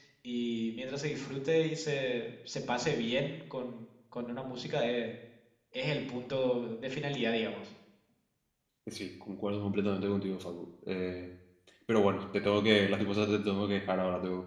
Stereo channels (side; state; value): both; identical; correlation 1.00